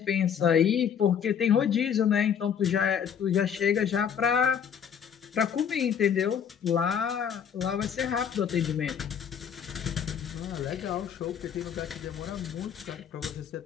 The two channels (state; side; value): quieter; right; 8.0 dB